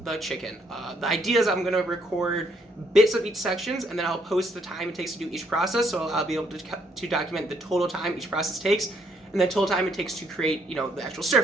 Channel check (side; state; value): both; normal; correlation 0.70